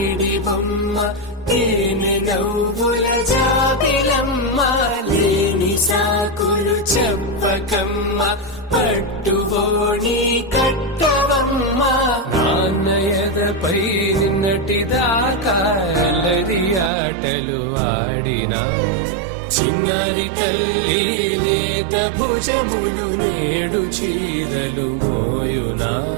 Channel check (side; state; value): left; drops out; at 16.9 s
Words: బొమ్మ తేనె నవ్వుల జాబిలమ్మ లేని సాకులు చెప్పకమ్మ పట్టుబోని కట్టవమ్మ నాన్నయదపై నిన్నటిదాకా అల్లరి ఆటలు ఆడినా చిన్నారి తల్లి నేత భుజములు నేడు చీరలు మోయునా